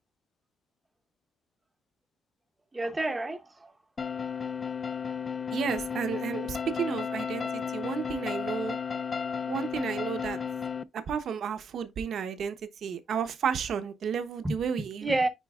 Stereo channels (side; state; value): both; normal; correlation 0.75